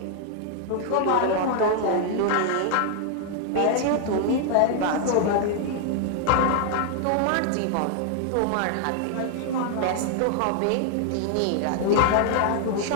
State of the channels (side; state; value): both; different; correlation 0.00